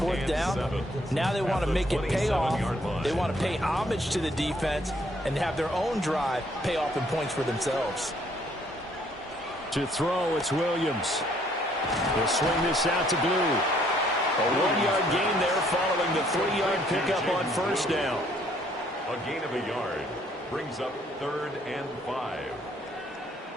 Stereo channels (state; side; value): normal; both; correlation 0.65